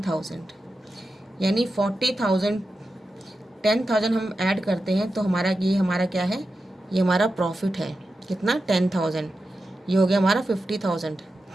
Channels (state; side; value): normal; both; correlation 0.91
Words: यानी 40,000 10,000 हम ऐड करते हैं तो हमारा ये हमारा क्या है? ये हमारा प्रॉफिट है। कितना? 10,000। ये हो गया हमारा 50,000।